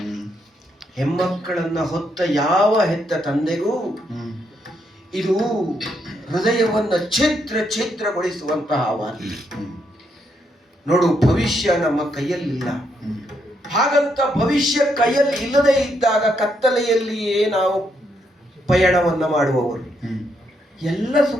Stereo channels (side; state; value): both; normal; correlation 0.77